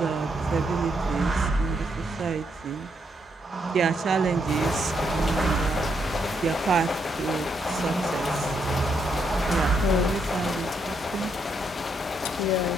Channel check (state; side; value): normal; both; correlation 0.77